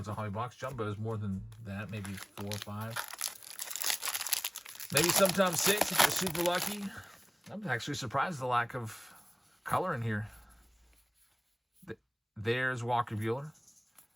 in a hobby box. Jumbo is more than that, maybe 4 or 5. Maybe sometimes 6 if you're super lucky. I'm actually surprised at the lack of color in here. There's Walker Buehler.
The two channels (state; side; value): identical; both; correlation 1.00